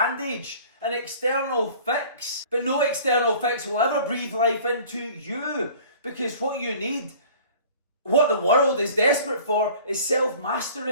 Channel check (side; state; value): both; inverted; correlation -0.48